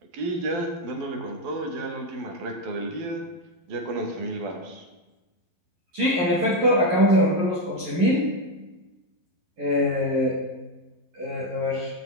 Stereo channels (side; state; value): left; late; 11 ms